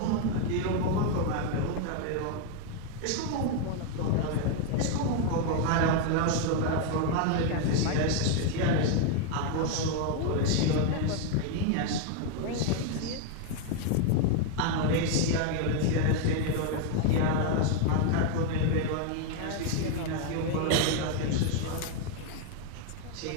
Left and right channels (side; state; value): both; different; correlation 0.01